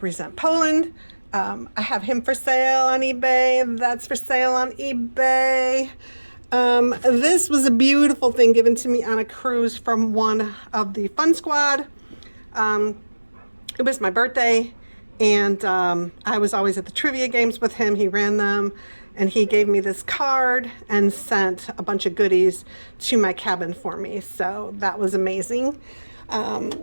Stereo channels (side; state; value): both; inverted; correlation -1.00